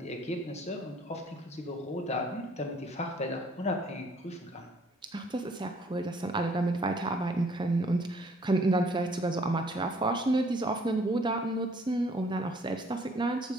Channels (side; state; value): both; normal; correlation 0.60